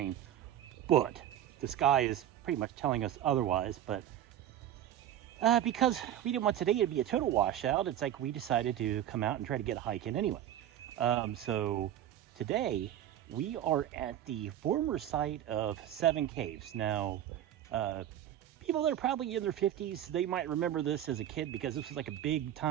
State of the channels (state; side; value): quieter; left; 11.3 dB